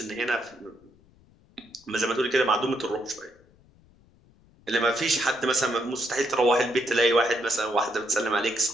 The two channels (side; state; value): left; noise; rumble, 29 dB below the sound